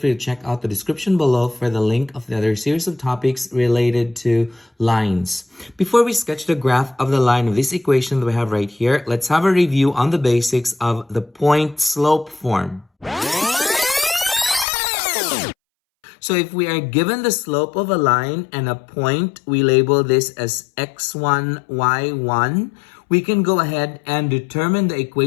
to check out the description below for the link of the other series of topics related to lines. Before we sketch the graph of the line of this equation that we have right here, let's have a review on the basics of the point-slope form. So if we are given the slope of a line and a point, we label this as x1, y1. We can go ahead and determine the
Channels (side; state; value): right; drops out; at 14.7 s